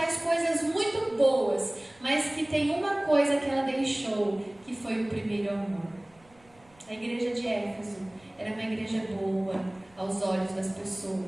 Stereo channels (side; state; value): right; noise; rumble, 30 dB below the sound